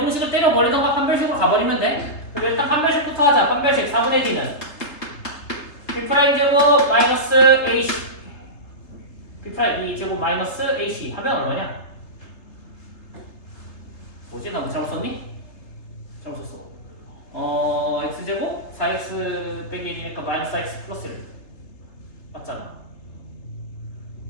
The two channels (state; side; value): late; right; 3.2 ms